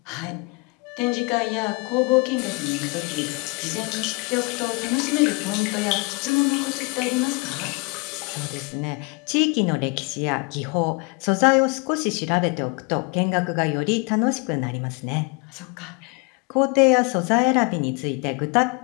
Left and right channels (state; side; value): quieter; right; 29.4 dB